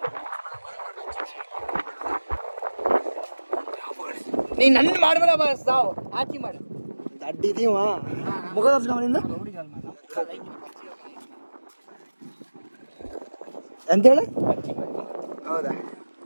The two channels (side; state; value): both; inverted; correlation -1.00